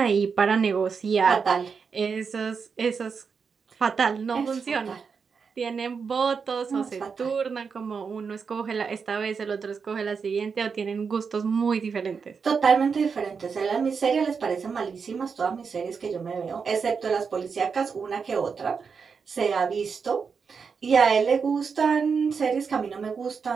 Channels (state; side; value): quieter; left; 5.7 dB